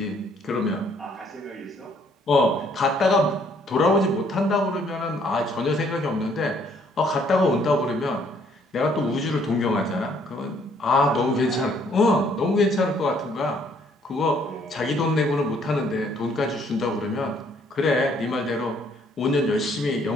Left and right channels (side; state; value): both; normal; correlation 0.65